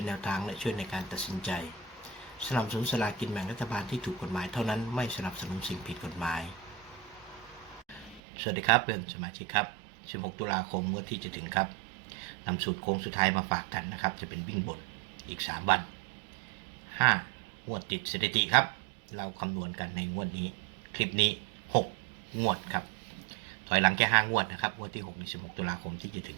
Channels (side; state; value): left; drops out; at 8.2 s